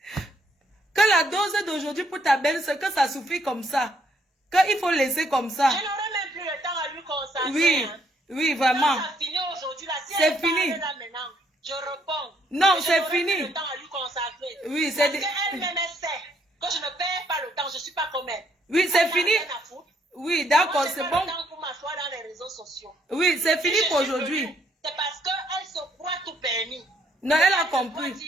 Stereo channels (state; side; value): normal; both; correlation 0.70